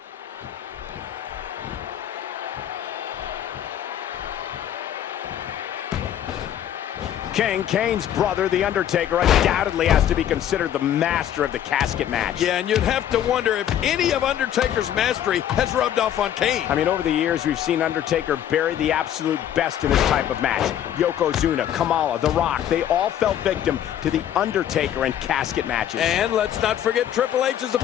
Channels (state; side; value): quieter; right; 10.6 dB